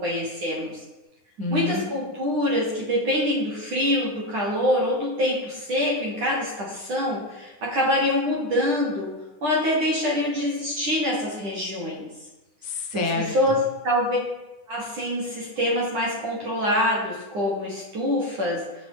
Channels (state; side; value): late; left; 9.9 ms